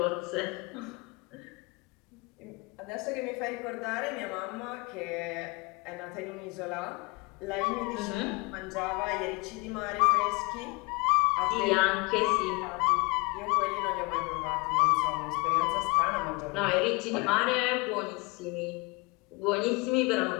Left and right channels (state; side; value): quieter; right; 27.4 dB